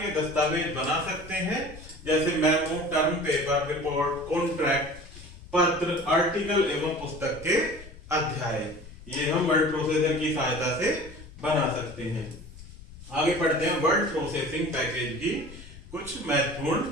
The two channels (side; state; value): left; noise; rumble, 17 dB below the sound